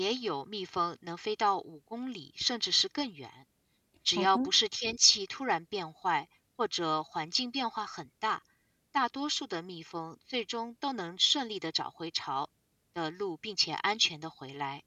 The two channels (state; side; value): identical; both; correlation 1.00